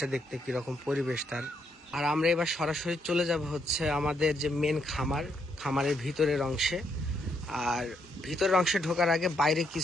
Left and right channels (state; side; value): normal; both; correlation 0.76